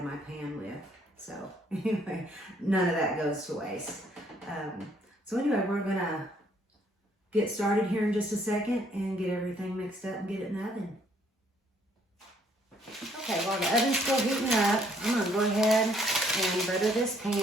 my pan with. So anyway, none of that goes to waste. So anyway, we're going to get started here in just a second and get everything mixed up and get it in the oven. Okay, while the oven's still heating up, I'm going to go ahead and butter this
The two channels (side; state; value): both; normal; correlation 0.65